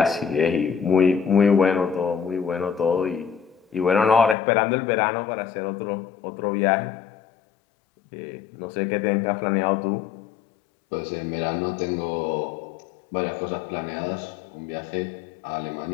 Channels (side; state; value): right; drops out; at 4.4 s